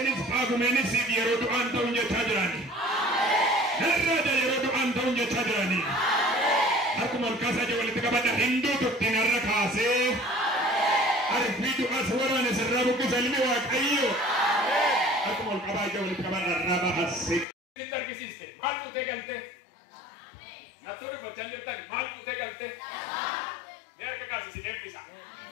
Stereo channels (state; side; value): drops out; right; at 17.4 s